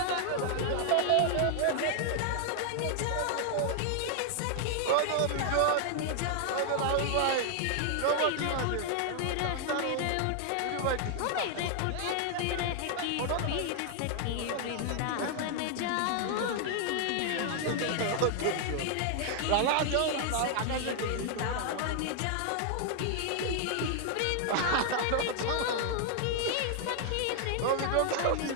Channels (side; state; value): both; different; correlation 0.00